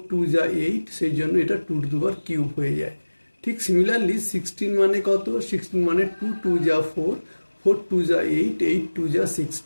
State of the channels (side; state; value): both; inverted; correlation -1.00